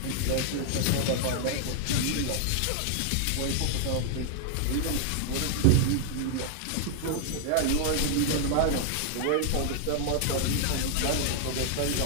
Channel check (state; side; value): different; both; correlation 0.00